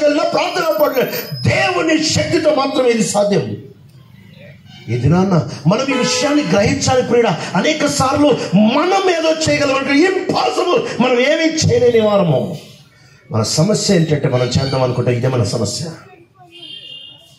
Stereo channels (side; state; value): both; identical; correlation 1.00